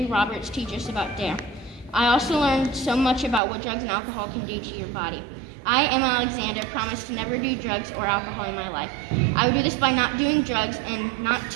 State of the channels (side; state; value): left; drops out; at 3.4 s